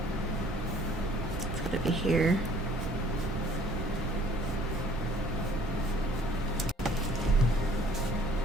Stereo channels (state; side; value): normal; both; correlation 0.56